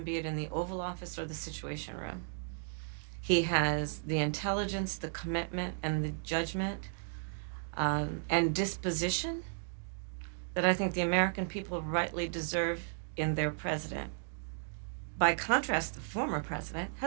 be it in the Oval Office or the Situation Room. He has the intelligence, the commitment, and the judgment and disposition that I think the American people rightly deserve in their president. By contrast, the former president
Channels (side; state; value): left; silent; digital silence